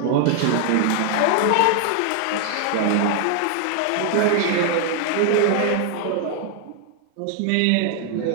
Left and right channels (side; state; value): both; different; correlation 0.00